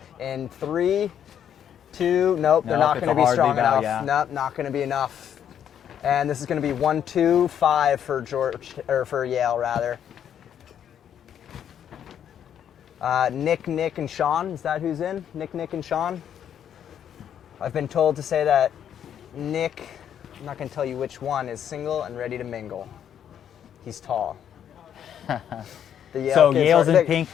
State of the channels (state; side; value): quieter; right; 9.3 dB